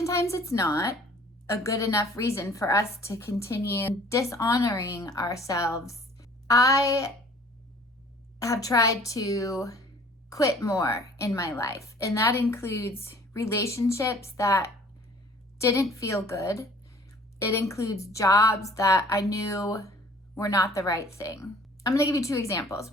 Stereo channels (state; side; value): normal; both; correlation 0.52